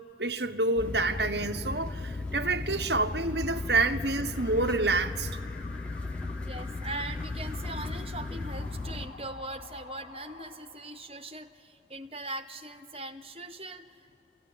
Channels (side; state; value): both; normal; correlation 0.31